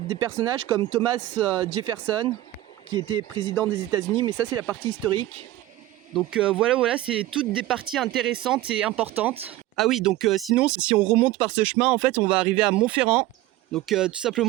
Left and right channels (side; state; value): left; quieter; 15.7 dB